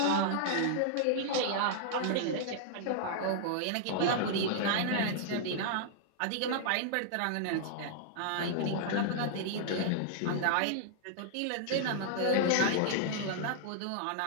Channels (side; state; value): both; different; correlation -0.01